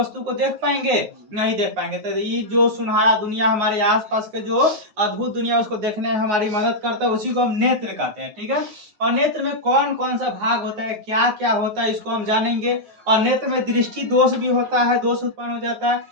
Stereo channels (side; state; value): left; late; 9.5 ms